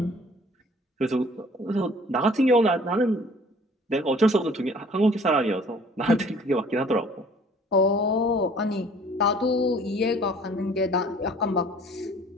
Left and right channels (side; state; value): both; normal; correlation 0.53